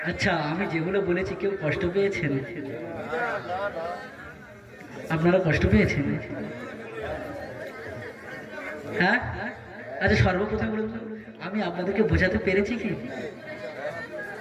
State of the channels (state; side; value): identical; both; correlation 1.00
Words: আচ্ছা, আমি যেগুলো বলেছি কেউ কষ্ট পেয়েছেন? আপনারা কষ্ট পেয়েছেন? হ্যাঁ? আচ্ছা, সর্বপ্রথম বলুন, আমি আপনাদেরকে বোঝাতে পেরেছি কি?